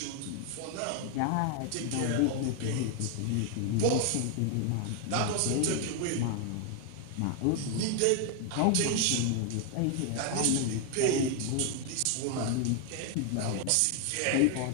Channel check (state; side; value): different; both; correlation 0.01